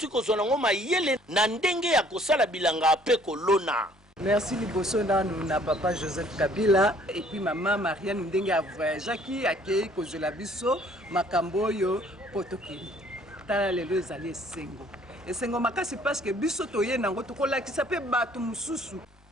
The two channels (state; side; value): normal; both; correlation 0.58